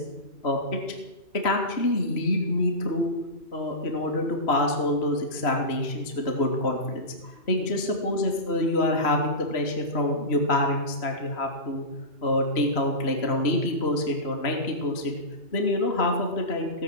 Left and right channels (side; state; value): right; late; 3.0 ms